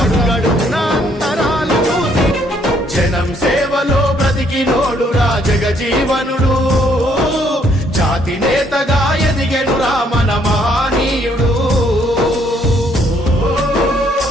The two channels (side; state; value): both; normal; correlation 0.68